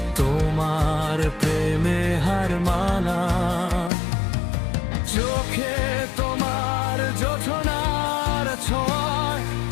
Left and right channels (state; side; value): drops out; right; at 3.9 s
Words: তোমার প্রেমে হার মানা। চোখে তোমার জোছনার ছোঁয়ায়